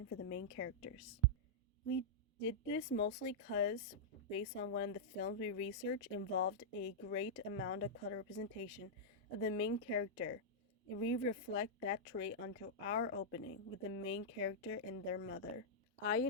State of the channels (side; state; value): both; normal; correlation -0.08